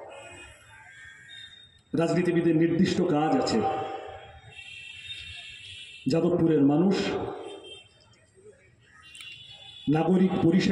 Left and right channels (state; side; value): identical; both; correlation 1.00